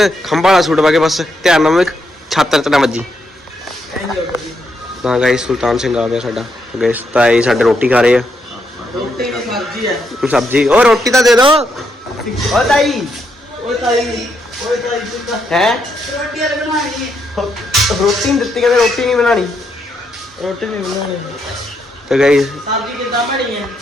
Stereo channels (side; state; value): both; normal; correlation 0.78